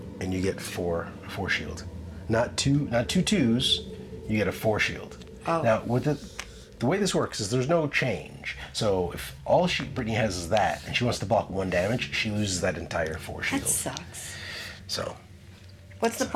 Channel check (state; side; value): identical; both; correlation 1.00